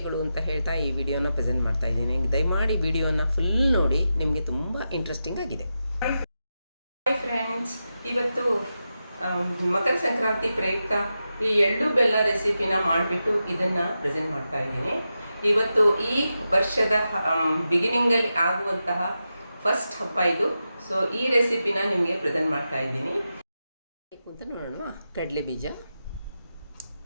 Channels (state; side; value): inverted; both; correlation -0.90